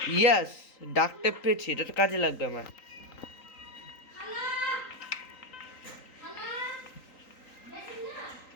ইয়াস, ডাক টেপ পেয়েছি, এটা তো কাজে লাগবে আমার।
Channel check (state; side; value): late; right; 3.9 ms